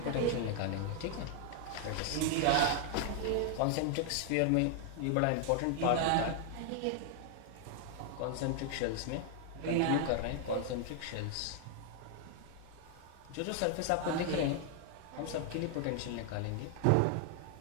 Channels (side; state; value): both; different; correlation 0.00